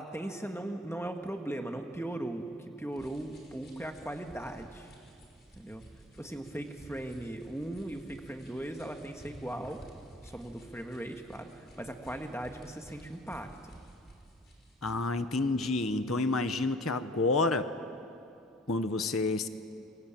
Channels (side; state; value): both; normal; correlation 0.50